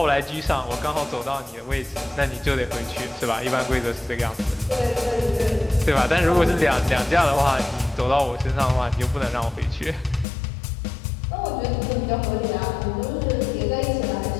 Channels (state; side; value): drops out; right; at 10.2 s